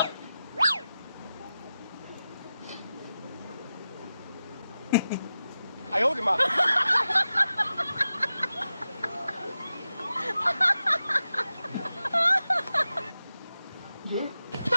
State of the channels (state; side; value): inverted; both; correlation -0.92